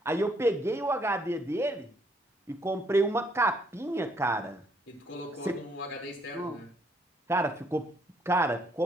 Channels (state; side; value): normal; both; correlation 0.68